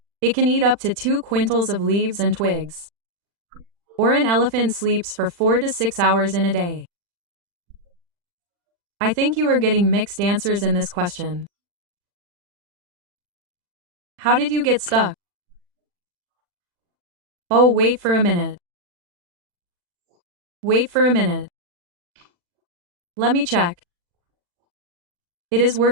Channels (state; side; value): late; left; 40 ms